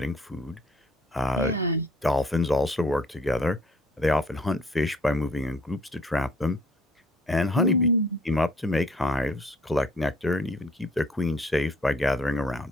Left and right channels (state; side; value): normal; both; correlation 0.58